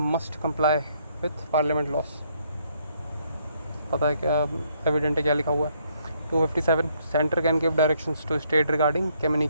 comply with parliament loss. पता है क्या, एविडेंट है क्या लिखा हुआ है, 257 centre can give directions to state regarding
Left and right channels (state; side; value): inverted; both; correlation -0.69